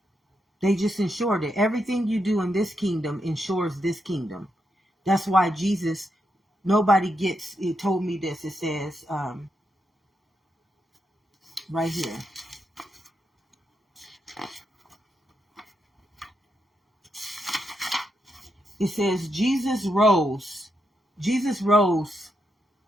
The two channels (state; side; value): normal; both; correlation 0.83